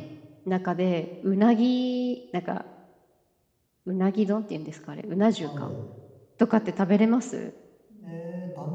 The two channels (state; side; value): identical; both; correlation 1.00